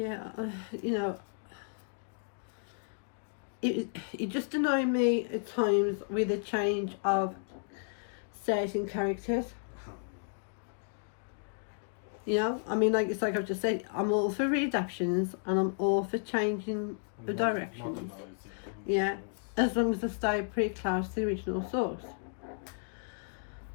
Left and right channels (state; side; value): silent; right; digital silence